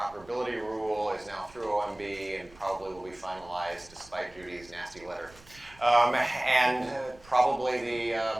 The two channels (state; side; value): noise; right; rumble, 24 dB below the sound